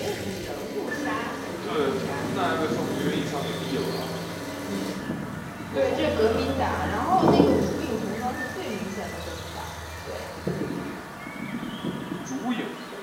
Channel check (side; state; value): both; identical; correlation 1.00